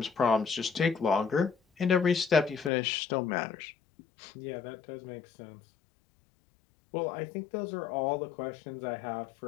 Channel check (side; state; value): right; drops out; at 2.7 s